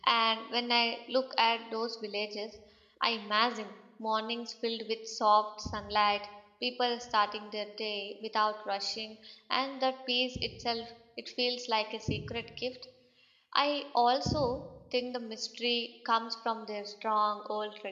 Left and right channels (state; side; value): identical; both; correlation 1.00